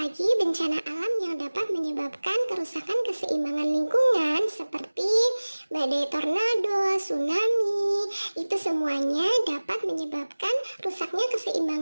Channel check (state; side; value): inverted; both; correlation -1.00